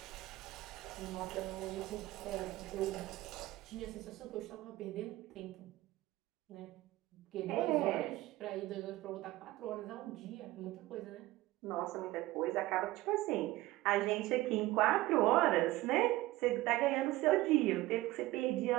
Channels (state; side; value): quieter; left; 17.8 dB